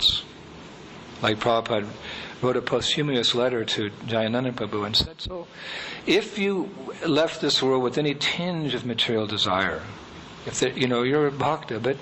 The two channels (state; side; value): identical; both; correlation 1.00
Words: Like Prabhupada wrote a posthumous letter to Jayananda Prabhu and said, so if you left this world with any tinge of material desire, if there, you're a bhakta, but